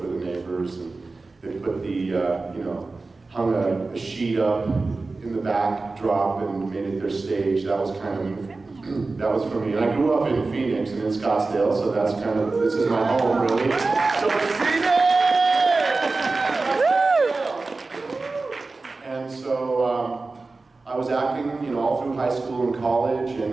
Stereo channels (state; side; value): quieter; left; 3.7 dB